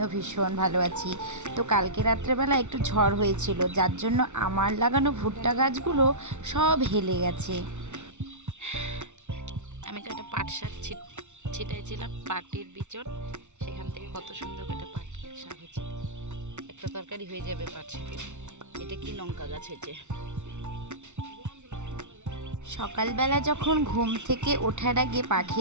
ভীষণ ভালো আছি। তো কালকে রাত্রেবেলা একটু ঝড় হয়েছিল, যার জন্য আমার লাগানো ভুট্টা গাছগুলো সব হেলে গেছে। আমি একটা পাট শাক ছিটাইছিলাম, পাটের বিচন, সেখান থেকে কত সুন্দর একটা পাট শাক হয়েছে। একটা তরকারি হয়ে যাবে পাট শাকের। এটা কি লঙ্কা গাছ হয়েছে। সকালবেলা যখন ঘুম থেকে ওঠার আগে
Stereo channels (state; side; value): late; left; 0.83 ms